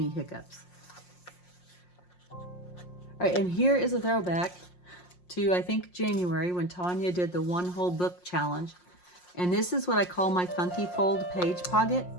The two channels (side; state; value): right; late; 5.6 ms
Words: hiccups. All right, and here is a throwback to, I think, January, when Tania did the one whole book challenge. And this is what I call my funky fold page pocket.